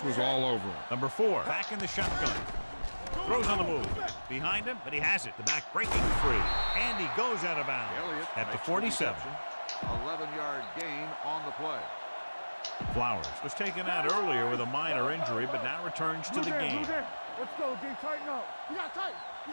was all over him. Number 4, back in the shotgun. Throws on the move. Behind him, but he has it. The back breaking free. And he goes out of bounds at the 47. 11-yard gain on the play. Flowers was taken out earlier with a minor injury, but now returns to the game. Let's go, D. Tighten up. You got tight.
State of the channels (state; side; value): inverted; both; correlation -1.00